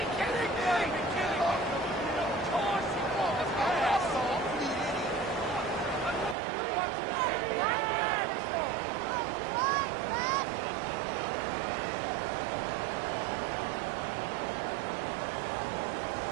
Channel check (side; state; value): left; drops out; at 6.4 s